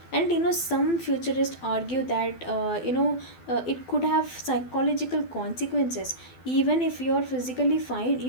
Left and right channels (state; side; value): late; right; 12 ms